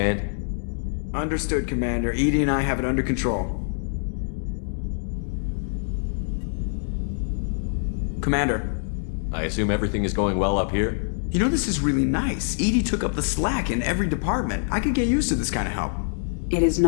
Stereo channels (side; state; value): right; silent; digital silence